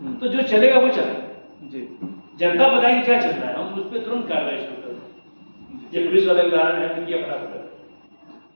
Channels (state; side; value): inverted; both; correlation -1.00